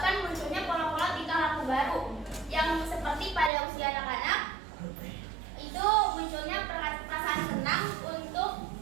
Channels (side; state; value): left; drops out; at 3.5 s